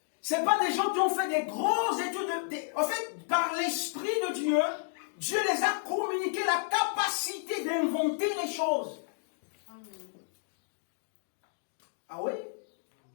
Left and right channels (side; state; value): right; silent; digital silence